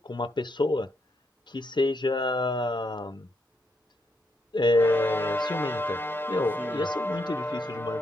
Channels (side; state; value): both; normal; correlation 0.78